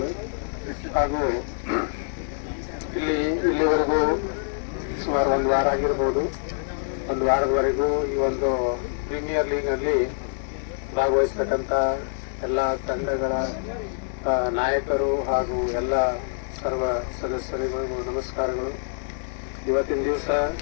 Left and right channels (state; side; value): silent; right; digital silence